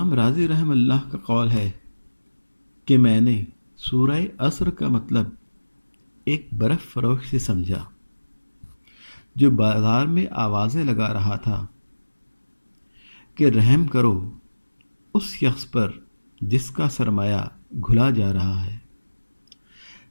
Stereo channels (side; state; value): both; inverted; correlation -1.00